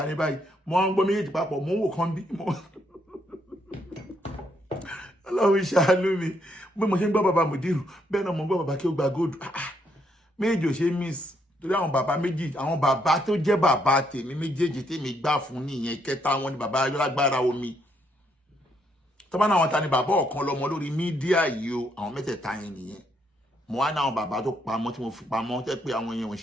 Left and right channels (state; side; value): normal; both; correlation 0.74